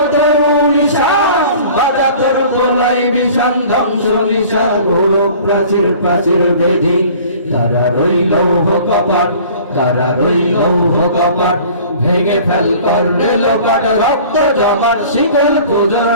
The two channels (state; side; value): inverted; both; correlation -0.47